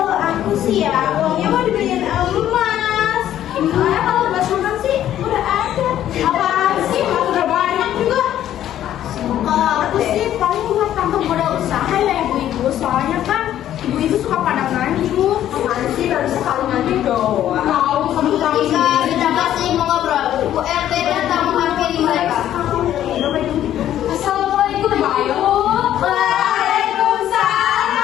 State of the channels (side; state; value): right; quieter; 11.7 dB